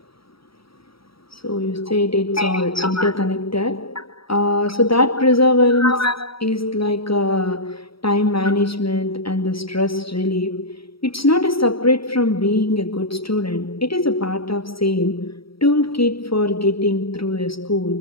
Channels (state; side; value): late; right; 0.75 ms